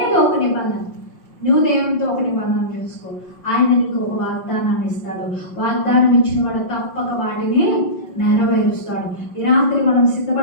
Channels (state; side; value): late; right; 5.6 ms